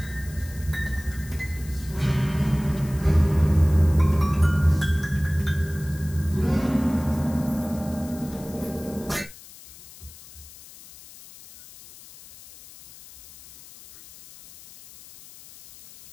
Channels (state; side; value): noise; left; hiss, 19 dB below the sound